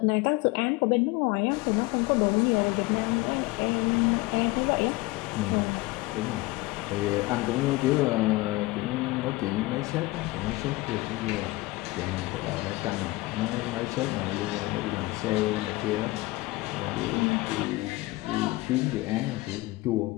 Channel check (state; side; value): quieter; right; 21.2 dB